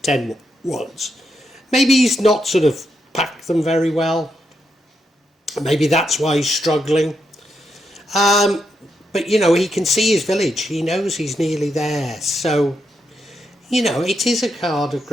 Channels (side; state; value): both; normal; correlation 0.82